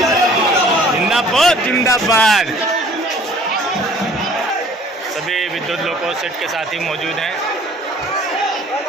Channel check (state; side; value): normal; both; correlation 0.52